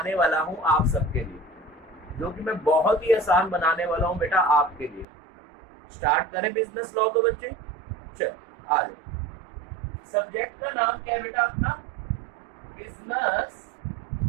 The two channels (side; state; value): left; drops out; at 5.1 s